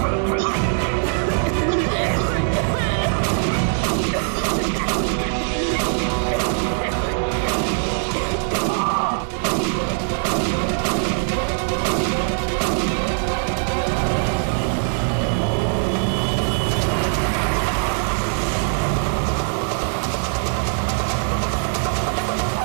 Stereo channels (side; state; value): left; silent; digital silence